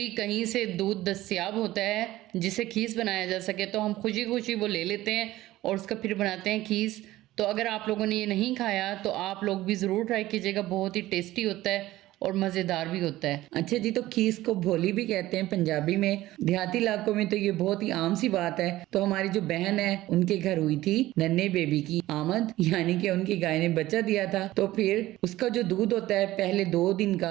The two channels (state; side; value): quieter; left; 16.2 dB